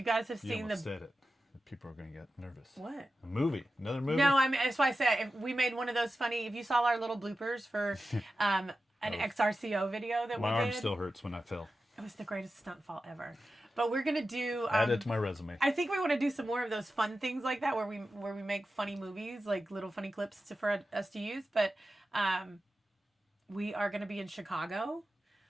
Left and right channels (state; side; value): normal; both; correlation 0.93